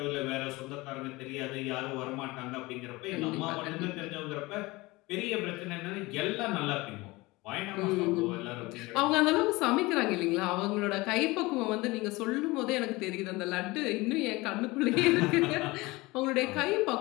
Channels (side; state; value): right; quieter; 22.0 dB